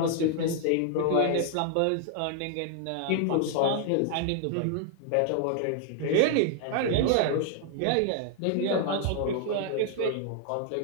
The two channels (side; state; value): both; different; correlation 0.00